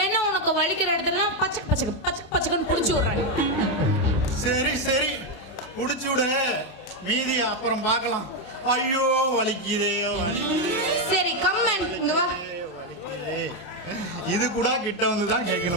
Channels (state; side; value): late; right; 28 ms